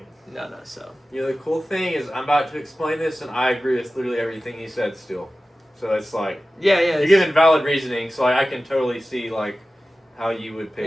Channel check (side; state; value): both; normal; correlation 0.95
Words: No. So You know, the cool thing is I'm about to explain this, and I agree with literally everything he said still. So it's like Yeah, you're giving valid reasoning. So like, I can totally see like how you would pick